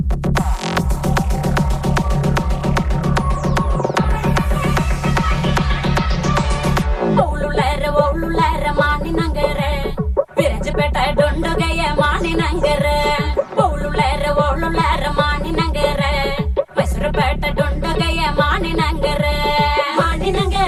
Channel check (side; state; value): both; identical; correlation 1.00